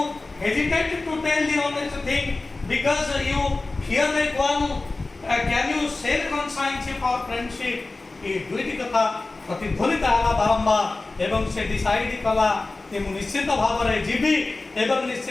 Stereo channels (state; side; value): quieter; right; 3.3 dB